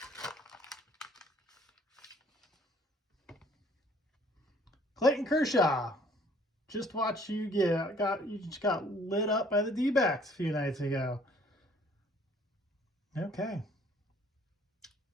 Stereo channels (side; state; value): both; normal; correlation 0.58